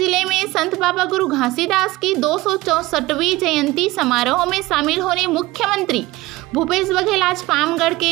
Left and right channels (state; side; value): quieter; left; 19.5 dB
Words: में संत बाबा गुरु घासीदास की 264वीं जयंती समारोह में शामिल होने मुख्यमंत्री भूपेश बघेल आज पामगढ़